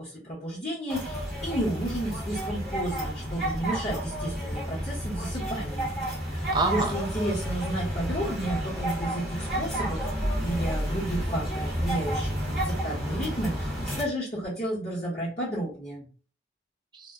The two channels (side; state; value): both; normal; correlation 0.62